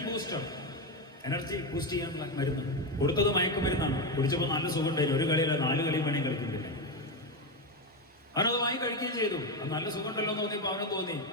ബൂസ്റ്റ് ചെയ്യാനുള്ള മരുന്ന്. കൊടുത്തത് മയക്കുമരുന്നാണ്. കുടിച്ചപ്പോൾ നല്ല സുഖം ഉണ്ടായിരുന്നു. ഒരു കളിയല്ല 4 കളിയും വേണമെങ്കിൽ കളിക്കുന്നില്ല. അവനത് വാങ്ങി കഴിക്കുകയും ചെയ്തു. അത് നല്ല സുഖം ഉണ്ടല്ലോ എന്ന് തോന്നിയപ്പോൾ അവന് തോന്നി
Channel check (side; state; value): both; normal; correlation 0.11